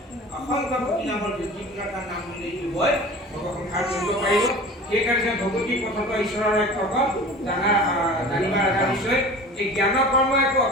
অসংখ্য কোটি নামৰ যিকোনো এটা নাম বুলি দিবই ভগৱন্তৰ কৰিব পাৰিব সেইকাৰণে ভগৱতী পথত ঈশ্বৰৰ এক ভকত জানিবা লগা নিশ্চয় এই জ্ঞান কৰ্ম একো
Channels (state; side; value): normal; both; correlation 0.39